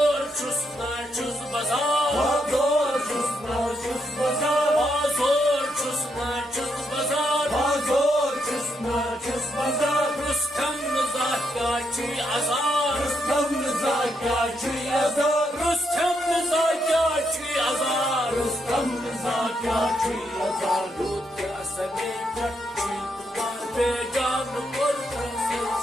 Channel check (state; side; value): normal; both; correlation 0.79